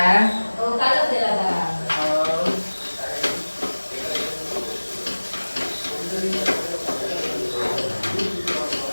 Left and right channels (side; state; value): both; inverted; correlation -1.00